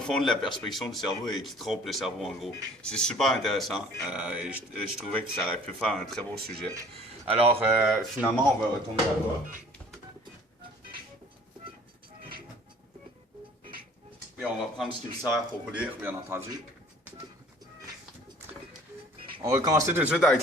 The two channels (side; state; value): both; normal; correlation 0.52